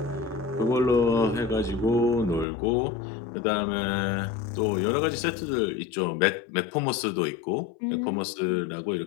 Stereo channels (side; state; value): right; drops out; at 2.5 s